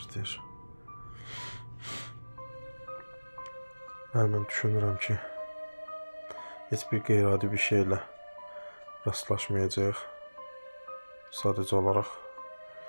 Mən düşünürəm ki, heç bir qeyri-adi bir şeylə rastlaşmayacaq. Sadəcə olaraq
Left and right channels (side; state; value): both; inverted; correlation -1.00